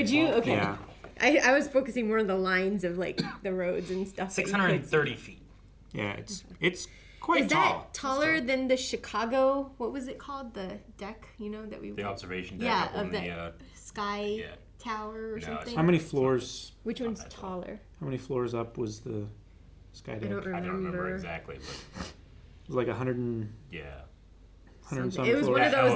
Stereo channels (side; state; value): both; identical; correlation 1.00